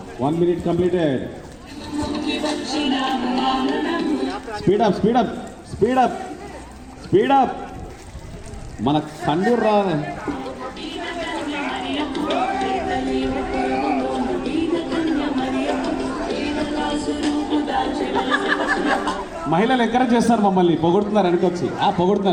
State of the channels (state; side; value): identical; both; correlation 1.00